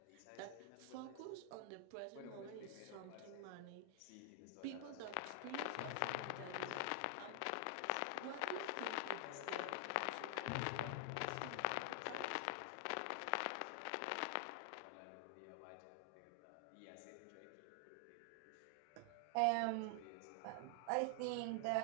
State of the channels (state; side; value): different; both; correlation 0.00